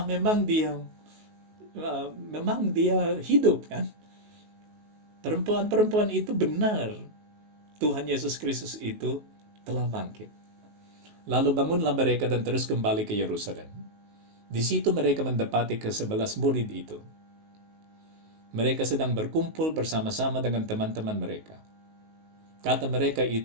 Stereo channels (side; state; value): left; late; 19 ms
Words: memang dia hidup kan. Perempuan-perempuan itu benar. Tuhan Yesus Kristus itu telah bangkit. Lalu bangunlah mereka dan terus kembali ke Yerusalem. Di situ mereka mendapati ke-11 murid itu. Mereka sedang berkumpul bersama-sama dengan teman-teman mereka. Kata mereka